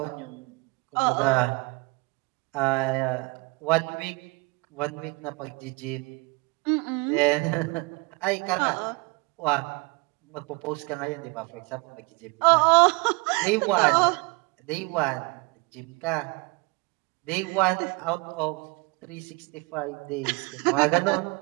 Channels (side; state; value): left; quieter; 26.8 dB